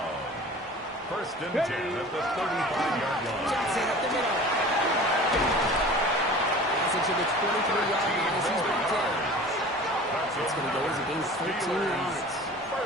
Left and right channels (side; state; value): both; normal; correlation 0.41